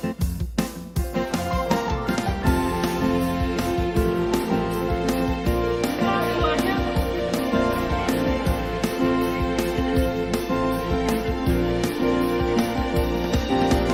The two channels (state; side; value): identical; both; correlation 1.00